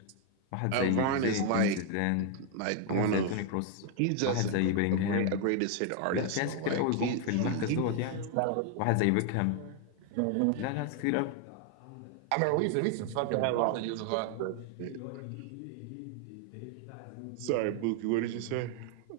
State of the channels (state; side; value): different; both; correlation 0.00